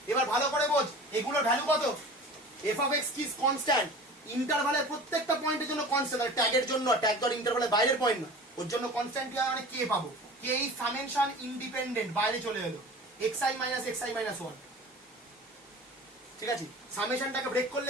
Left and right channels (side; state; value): both; normal; correlation 0.39